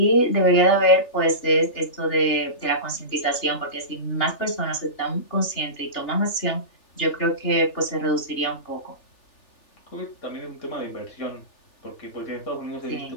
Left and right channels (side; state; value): right; late; 3.4 ms